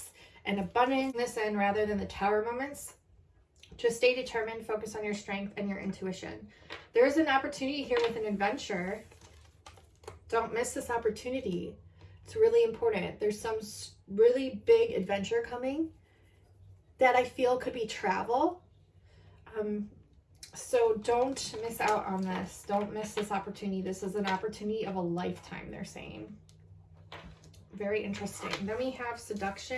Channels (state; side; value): identical; both; correlation 1.00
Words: and abundance this end rather than the tower moments, just stay determined, focus on your strength and your intuition. There's an opportunity here with an adventure. Don't miss this opportunity. It's really important. There's some really big adventure coming that I feel could be travel. So don't miss out on this. Don't miss this opportunity. This is an opportunity of a lifetime, they're saying. Very interesting. Then we have